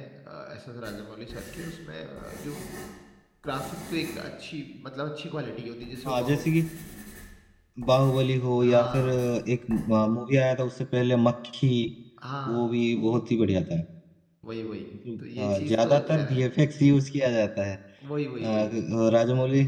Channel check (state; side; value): identical; both; correlation 1.00